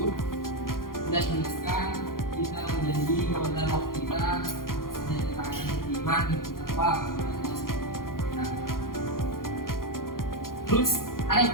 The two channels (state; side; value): late; right; 0.91 ms